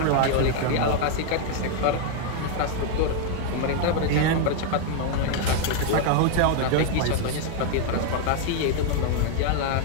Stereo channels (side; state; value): both; different; correlation 0.00